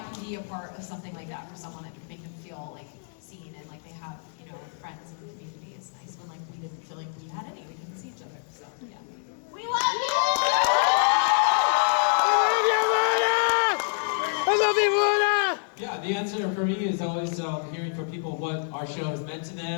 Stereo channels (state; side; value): silent; right; 60 dB below the other